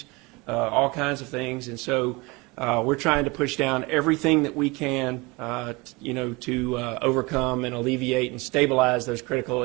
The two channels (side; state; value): left; quieter; 25.2 dB